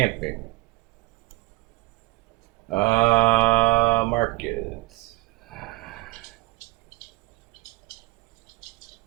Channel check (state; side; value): quieter; left; 21.3 dB